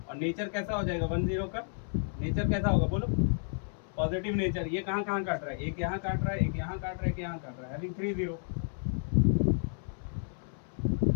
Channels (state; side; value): silent; right; 57 dB below the other